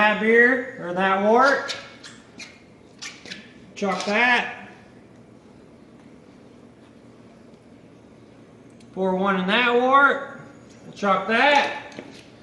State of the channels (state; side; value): identical; both; correlation 1.00